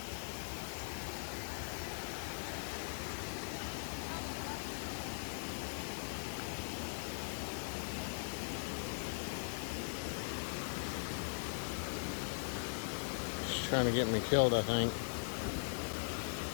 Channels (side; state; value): right; silent; 51 dB below the other